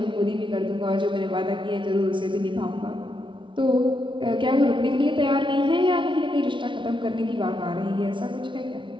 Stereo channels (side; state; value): left; late; 0.24 ms